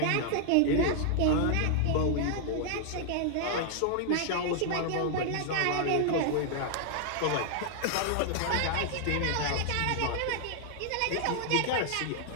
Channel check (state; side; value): different; both; correlation 0.00